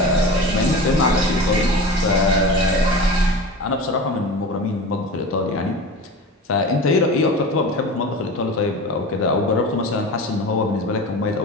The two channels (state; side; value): normal; both; correlation 0.32